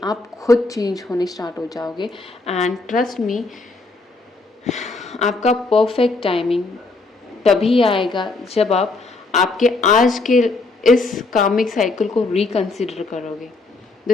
आप खुद चेंज होने स्टार्ट हो जाओगे। एंड ट्रस्ट मी, आपका परफेक्ट टाइमिंग तभी आएगा जब आप आपके आज के इस कार्मिक साइकिल को रिकंसिडर करोगे।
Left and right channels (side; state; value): right; quieter; 3.5 dB